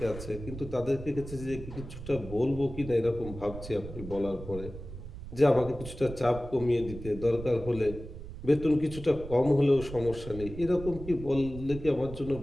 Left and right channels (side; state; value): right; noise; rumble, 12 dB below the sound